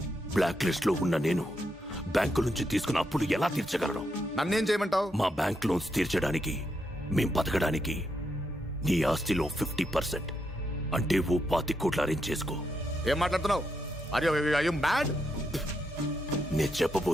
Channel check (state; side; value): normal; both; correlation 0.81